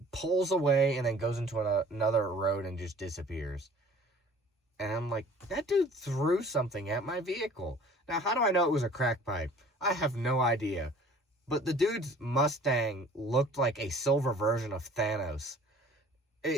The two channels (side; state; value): both; normal; correlation 0.49